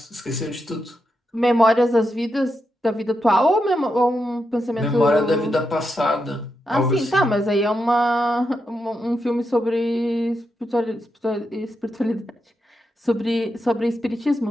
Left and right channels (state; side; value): normal; both; correlation 0.85